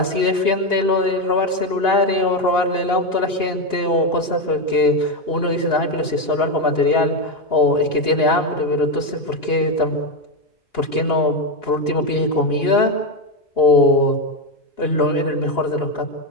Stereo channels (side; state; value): right; late; 2.9 ms